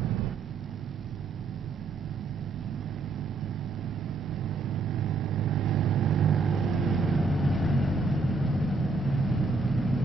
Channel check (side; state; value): left; quieter; 3.9 dB